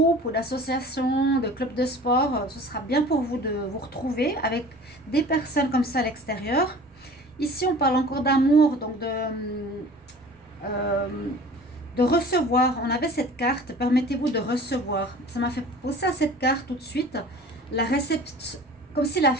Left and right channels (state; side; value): normal; both; correlation 0.43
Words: ou d'associations, de clubs de sport. Ce sera bien pour vous de vous retrouver avec des personnes comme ça à l'extérieur. Ici, on parle encore d'amour, donc de recevoir. On avait cette carte, permettez-vous de recevoir. Ça m'a fait penser à cette carte tout de suite. La réception, comme si la